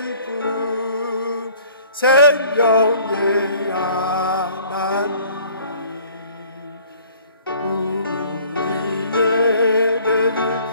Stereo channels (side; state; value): both; inverted; correlation -0.54